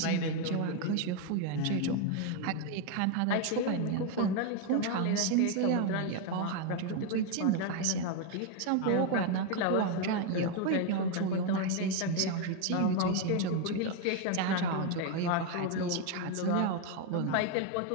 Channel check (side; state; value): both; different; correlation 0.01